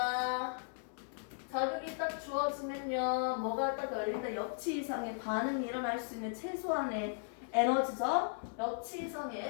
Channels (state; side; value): silent; right; digital silence